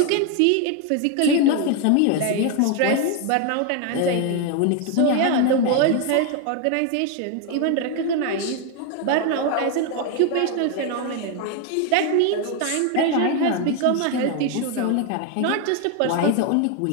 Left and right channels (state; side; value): different; both; correlation 0.01